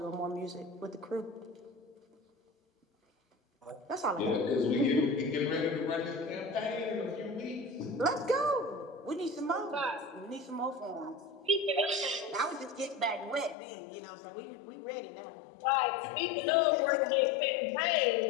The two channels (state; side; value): drops out; right; at 13.6 s